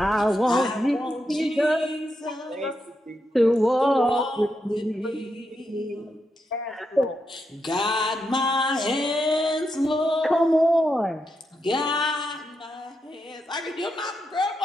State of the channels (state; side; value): normal; both; correlation 0.84